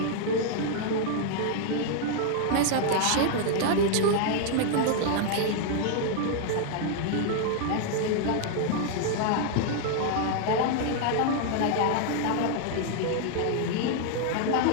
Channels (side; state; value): both; different; correlation 0.00